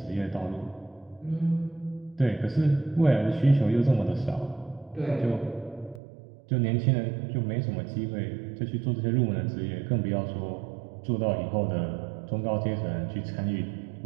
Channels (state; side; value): drops out; left; at 6.0 s